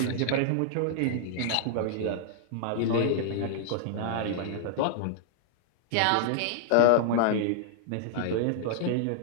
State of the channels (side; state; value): both; different; correlation -0.01